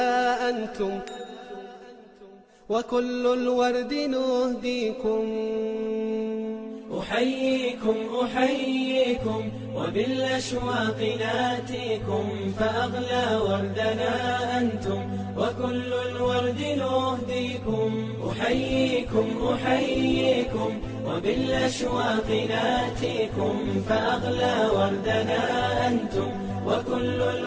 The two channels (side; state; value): both; identical; correlation 1.00